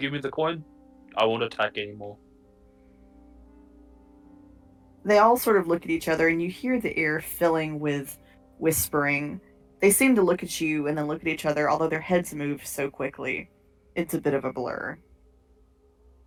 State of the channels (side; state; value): both; identical; correlation 1.00